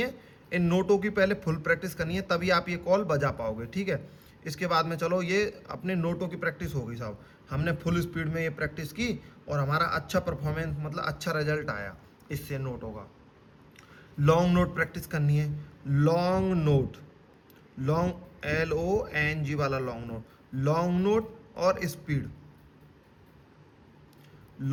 इन नोटों की पहले फुल प्रैक्टिस करनी है, तभी आप ये कॉल बजा पाओगे। ठीक है, इसके बाद में चलो ये अपने नोटों की प्रैक्टिस हो गई साहब, हमने फुल स्पीड में ये प्रैक्टिस की और हमारा अच्छा परफॉर्मेंस मतलब अच्छा रिजल्ट आया इससे नोटों का। लॉन्ग नोट प्रैक्टिस करनी है। लॉन्ग नोट, लॉन्ग LONG वाला लॉन्ग नोट, लॉन्ग नोट और स्पीड।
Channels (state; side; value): identical; both; correlation 1.00